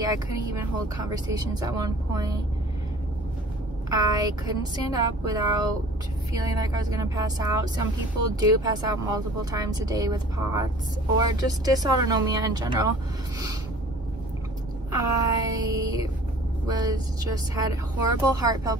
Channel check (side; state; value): both; normal; correlation 0.48